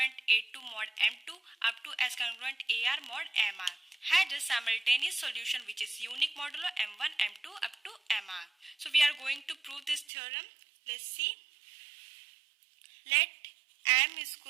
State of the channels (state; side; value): drops out; left; at 10.1 s